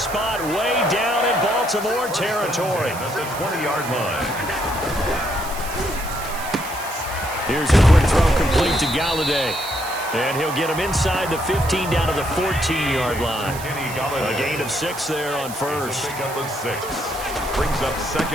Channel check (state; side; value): noise; right; hiss, 12 dB below the sound